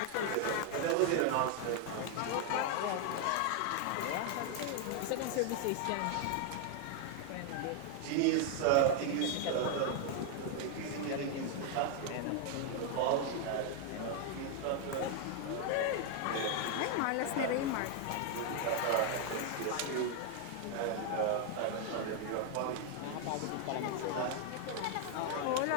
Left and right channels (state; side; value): different; both; correlation 0.00